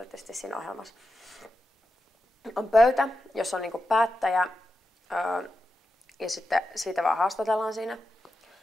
siinä ohjelmassa. On pöytä, jossa on niinku päättäjä ja sitten siitä vaan haastatellaan siinä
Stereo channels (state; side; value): normal; both; correlation 0.89